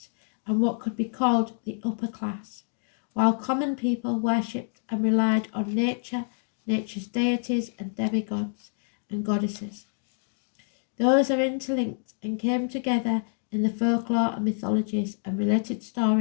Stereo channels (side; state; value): right; silent; digital silence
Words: and what could be called the upper class, while common people worshipped and relied on nature, nature's deities and demigods and goddesses. Those are interlinked and came together in the folklore and mythologies and related